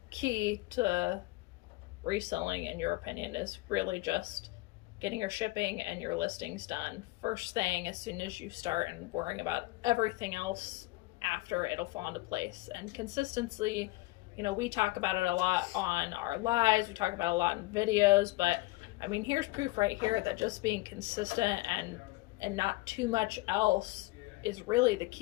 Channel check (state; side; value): quieter; right; 21.0 dB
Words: key to reselling, in your opinion, is really just getting your shipping and your listings done first thing as soon as you start, and worrying about everything else after. It'll fall into place. And consistency, we talk about it a lot on our lives, we talk about it a lot in videos, but I mean, here's proof right here that just being consistent and not too much else is really the